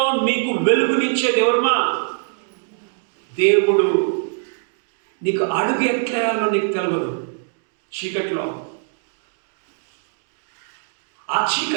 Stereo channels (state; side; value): silent; left; digital silence